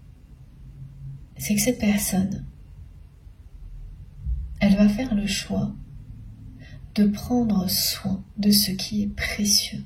c'est que cette personne, elle va faire le choix de prendre soin de ce qui est précieux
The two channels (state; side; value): identical; both; correlation 1.00